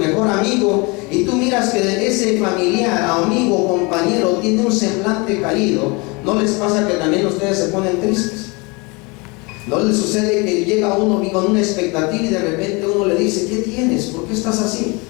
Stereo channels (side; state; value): right; quieter; 27.8 dB